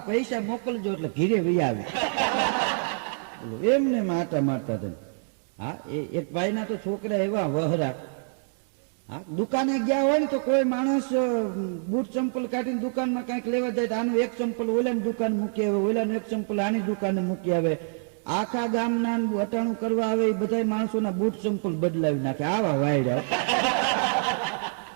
પૈસા મોકલજો એટલે ઘીરે વહી આવે. એમને માટા મારતા હતા. હા, એક ભાઈના તો છોકરા એવા વહરા. હા, દુકાને ગયા હોય ને તો કોઈ માણસ બૂટ ચંપલ કાઢીને દુકાનમાં કઈક લેવા જાય તો આનું એક ચંપલ ઓલાની દુકાન મૂકી આવે, ઓલાનું એક ચંપલ આની દુકાને મૂકી આવે. આખા ગામના વટાણું કરવા આવે એ બધા માણસોના બૂટ ચંપલ બદલાવી નાખે. આવા વાયડા.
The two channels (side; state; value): left; silent; digital silence